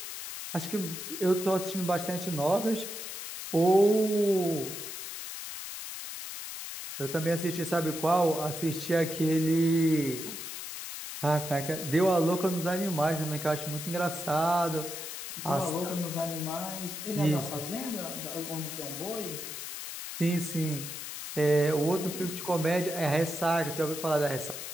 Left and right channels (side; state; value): left; noise; hiss, 8 dB below the sound